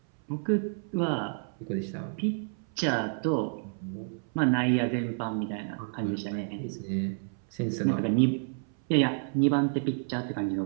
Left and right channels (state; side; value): silent; left; 58 dB below the other